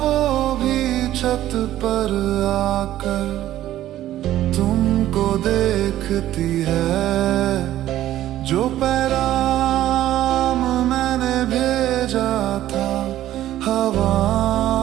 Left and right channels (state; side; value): quieter; left; 13.4 dB